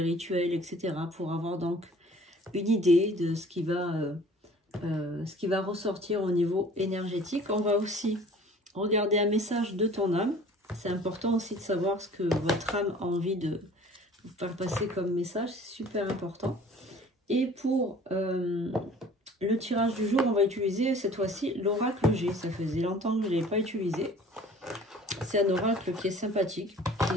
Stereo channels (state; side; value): normal; both; correlation 0.49